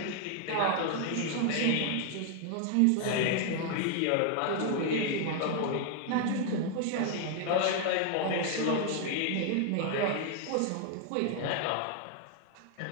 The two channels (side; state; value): both; different; correlation 0.00